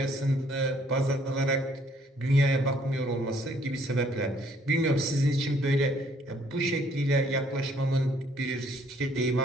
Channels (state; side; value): normal; both; correlation 0.64